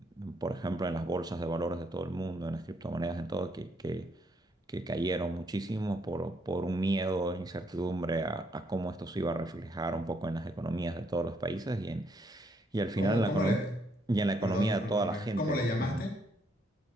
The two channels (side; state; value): both; normal; correlation 0.72